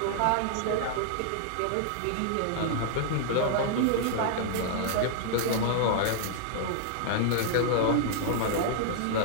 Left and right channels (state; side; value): different; both; correlation -0.01